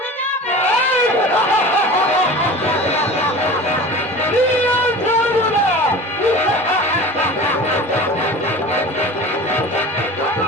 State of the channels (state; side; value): normal; both; correlation 0.36